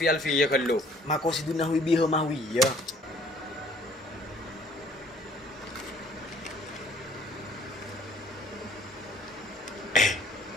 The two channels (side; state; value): both; normal; correlation 0.57